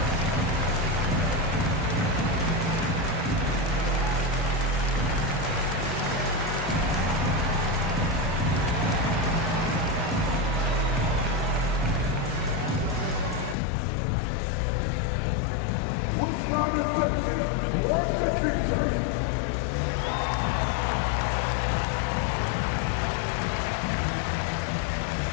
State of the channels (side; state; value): right; drops out; at 13.6 s